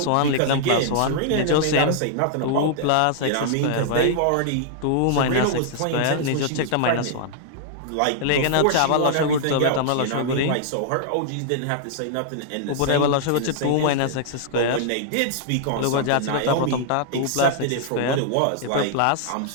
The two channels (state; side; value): different; both; correlation -0.01